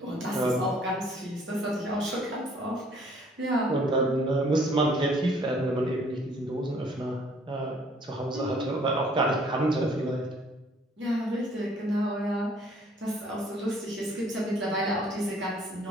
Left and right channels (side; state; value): both; normal; correlation 0.59